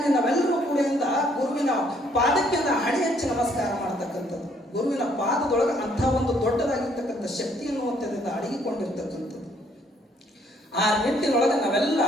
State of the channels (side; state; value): both; normal; correlation 0.66